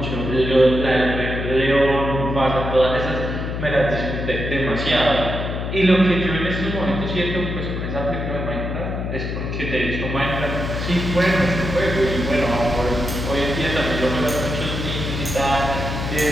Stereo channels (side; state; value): left; noise; hum, 4 dB below the sound